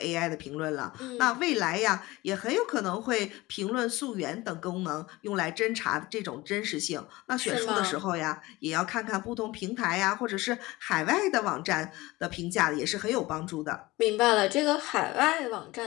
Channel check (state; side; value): quieter; right; 20.1 dB